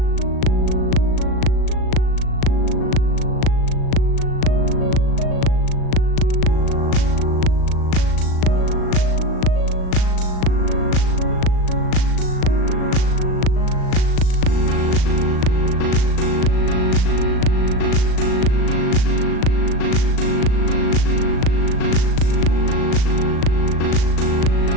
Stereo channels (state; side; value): late; right; 37 ms